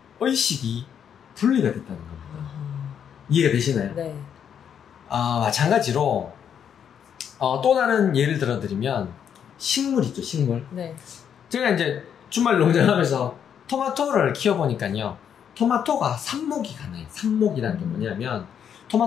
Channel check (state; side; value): quieter; right; 8.3 dB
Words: 의식이 분리가 됐다는 겁니다. 아하. 이해가 되시나요? 네. 마찬가지로 또 다른 예를 들어드리면 식물 있죠, 식물. 네. 제가 이제 주말 농장하면서 토마토를 키워보니까요, 토마토가 삽목이 가능해요. 삽목이라는 게 뭐냐면